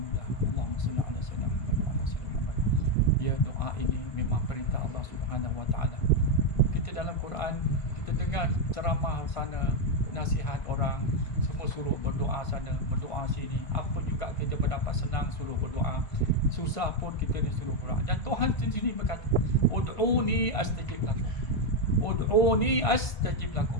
Allahumma salli ala sayyidina Muhammad wa ala sayyidina Muhammad. Ya, doa ini memang perintah Allah Subhanahu wa taala. Kita dalam Quran, kita dengar ceramah sana, nasihat orang, semua suruh berdoa sana, berdoa sini. Apa juga kita mendapat senang suruh berdoa. Susah pun kita disuruh berdoa. Dan Tuhan sendiri berkata, "Ud'uni astajib lakum." Ud'uni astajib lakum.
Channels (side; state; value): right; late; 1.5 ms